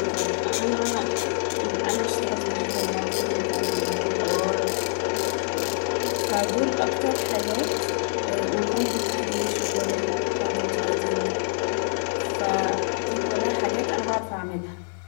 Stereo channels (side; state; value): right; silent; digital silence